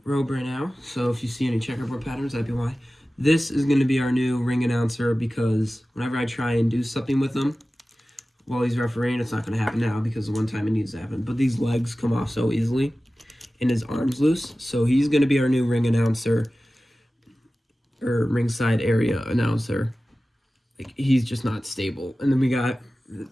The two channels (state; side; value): normal; both; correlation 0.96